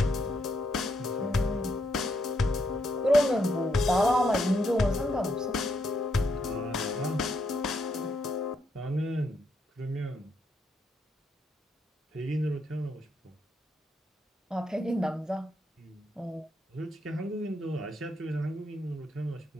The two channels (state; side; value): normal; both; correlation 0.78